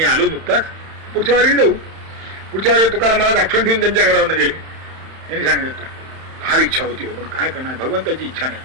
आलो नुकताच, पुढच्या वारीला जाऊ. पुढच्या वारी तुकाराम महाराज आठवण ठेवून त्यांच्या घरावर गेले. यांनी सांगितलं फार इच्छा होती, पण काय करणार, भगवंताची इच्छा नाही.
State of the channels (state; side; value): late; left; 31 ms